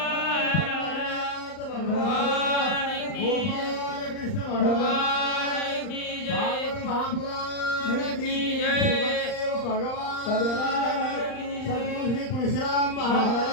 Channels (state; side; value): late; right; 39 ms